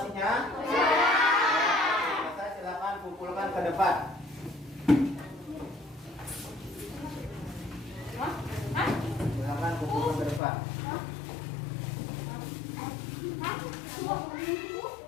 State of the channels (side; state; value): right; drops out; at 10.4 s